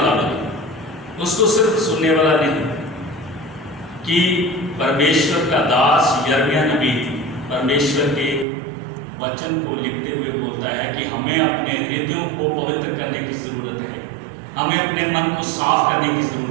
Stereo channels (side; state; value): left; drops out; at 8.5 s